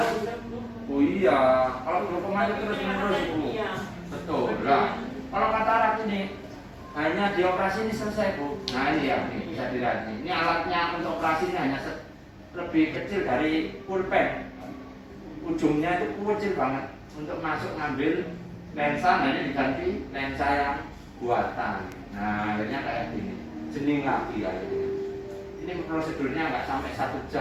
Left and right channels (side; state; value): both; identical; correlation 1.00